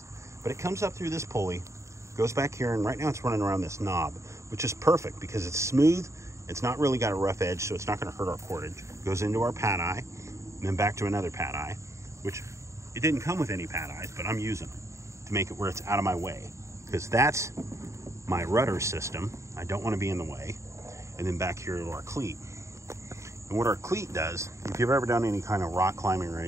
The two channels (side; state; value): left; late; 0.14 ms